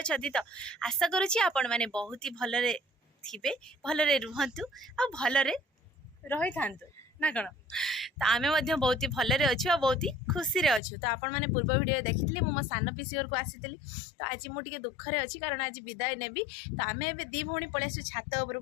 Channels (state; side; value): drops out; right; at 10.8 s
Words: तो आशा करूची आपण माने बहुत ही भलरे थिबे भलरे रुहंतु आ भलरे रही थांतु ना कण तो आमे मध्य बहुत ही भलरे अछु आ बहुत ही खुशी रे अछु तो आपण माने पूर्व वीडियो देखितली मो सान पिसी घर को आसीतली तो आज मु टिके दुख रे अछि कारण आज विदाय नेबी तो आमे एबे दी भौणी पळे आसु छात ऊपर